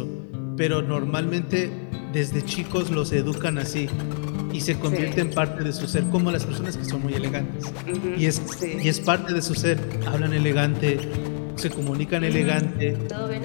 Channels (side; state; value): right; silent; digital silence